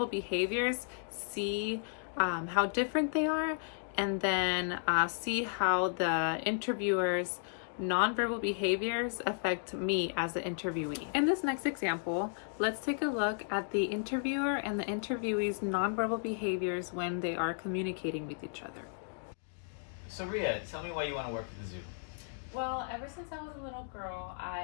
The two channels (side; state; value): right; silent; digital silence